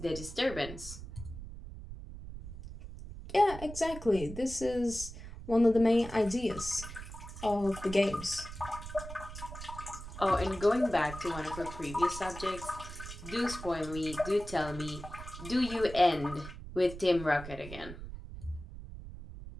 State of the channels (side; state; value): right; noise; rumble, 11 dB below the sound